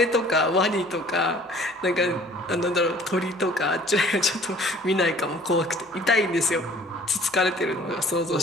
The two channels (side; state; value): both; normal; correlation 0.53